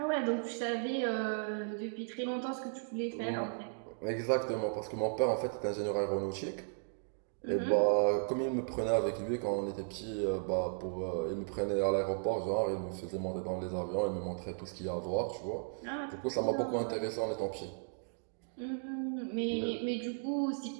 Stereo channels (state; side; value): silent; left; digital silence